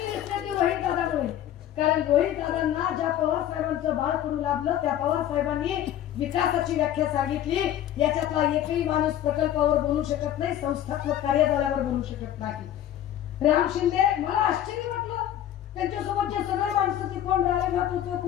दिसते ती रोहित दादामुळे. कारण रोहित दादांना ज्या पवार साहेबांचं बाळ करू लागलं त्या पवार साहेबांनी विकासाची व्याख्या सांगितली. याच्यातला एकही माणूस प्रकल्पावर बोलू शकत नाही, संस्थात्मक कार्यजाल्यावर बोलू शकत नाही. राम शिंदे, मला आश्चर्य वाटलं त्यांच्यासोबतचे सगळे माणसं ते कोण रालेभात होते,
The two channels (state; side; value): quieter; right; 11.5 dB